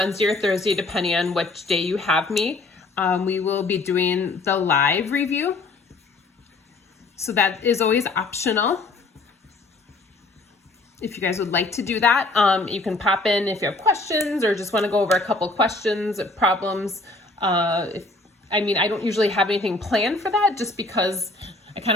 or Thursday, depending on which day you have me, we will be doing the live review. So that is always optional. If you guys would like to do that, you can pop in if you have questions or just want to go over a couple questions, problems. I don't usually have anything planned for that just because I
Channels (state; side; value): quieter; right; 3.1 dB